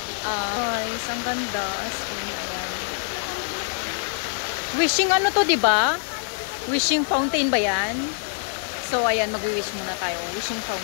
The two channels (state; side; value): silent; right; 60 dB below the other